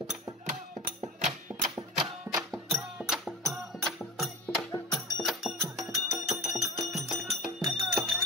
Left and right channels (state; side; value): normal; both; correlation 0.31